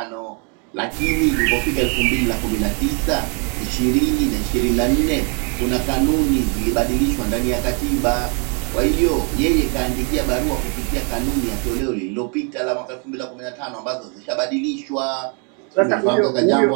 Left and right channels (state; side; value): quieter; left; 37.6 dB